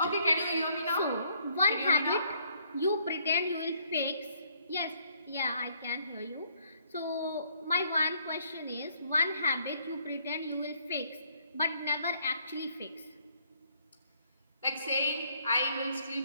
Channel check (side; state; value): both; inverted; correlation -0.66